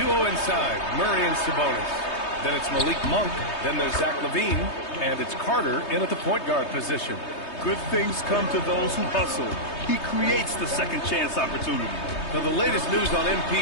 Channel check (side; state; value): right; late; 3.2 ms